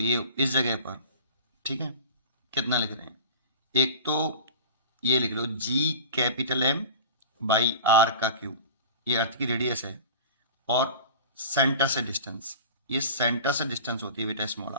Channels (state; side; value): inverted; both; correlation -0.37